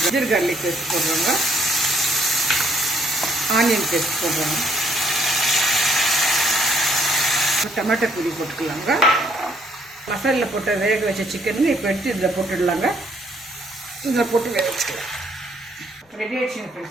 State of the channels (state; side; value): normal; both; correlation 0.67